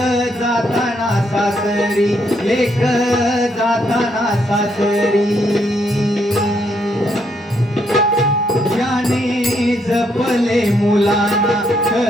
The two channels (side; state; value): both; normal; correlation 0.74